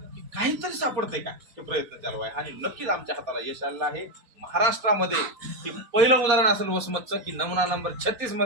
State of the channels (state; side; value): late; left; 4.2 ms